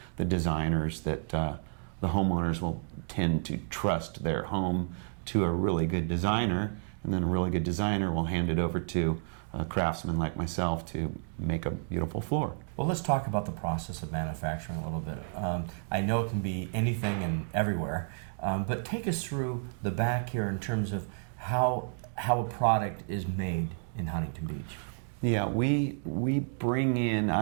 the designers that the homeowners will tend to trust their home to a really good designer, and then a really good designer will hand it over to a craftsman like myself to make a beautiful floor. Well, let's talk about the process of manufacturing a little bit. I know it can be anything and everywhere, but take us through the back here in terms of how a product is made in Huntington Beach. Yeah, we bring in,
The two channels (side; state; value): left; silent; digital silence